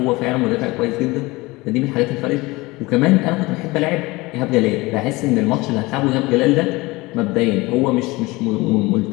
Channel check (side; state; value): right; quieter; 22.1 dB